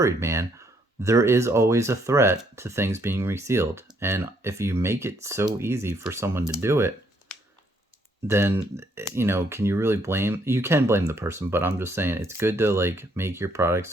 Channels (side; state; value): both; normal; correlation 0.70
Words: man. There is always a threat to things being resealed. And if you make it so easy for someone to do it, then, you know, can you really blame? You can blame the person, but I'm just saying it's good to, like, make your product